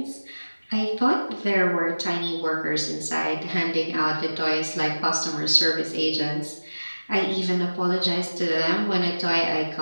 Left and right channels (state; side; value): inverted; both; correlation -1.00